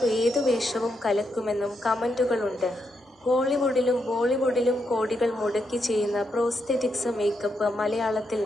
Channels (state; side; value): normal; both; correlation 0.81